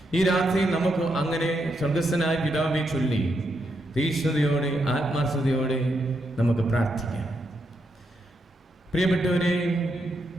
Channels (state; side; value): normal; both; correlation 0.81